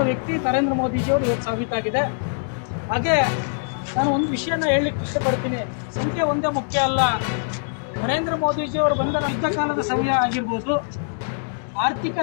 ವ್ಯಕ್ತಿ ನರೇಂದ್ರ ಮೋದಿಜಿಯವರು ಇವತ್ತು ಸಾಬೀತಾಗಿದೆ. ಹಾಗೆ ನಾನು ಒಂದು ವಿಷಯನ ಹೇಳಲಿಕ್ಕೆ ಇಷ್ಟಪಡ್ತೀನಿ. ಸಂಖ್ಯೆ ಒಂದೇ ಮುಖ್ಯ ಅಲ್ಲ. ನರೇಂದ್ರ ಮೋದಿಜಿಯವರು ಬಂದ ಯುದ್ಧ ಕಾಲದ ಸಮಯ ಆಗಿರ್ಬೋದು, ಆರ್ಥಿಕ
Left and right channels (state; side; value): silent; right; digital silence